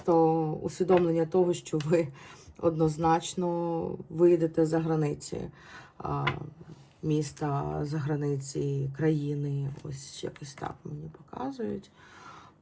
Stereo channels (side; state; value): both; identical; correlation 1.00